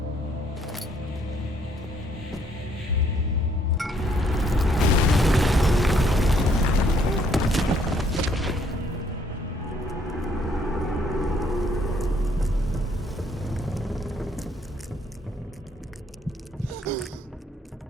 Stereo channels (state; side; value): normal; both; correlation 0.67